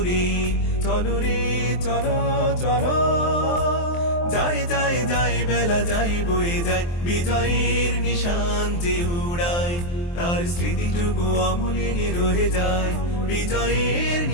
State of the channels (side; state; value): right; late; 23 ms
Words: চলো রে চলো চলো, যায় যায় যায় বেলা যায় বয়ে যায়। বিজয়ের নিশান যে উড়ায় তার স্মৃতিটুকু অমলিন রয়ে যায়। বিজয়ের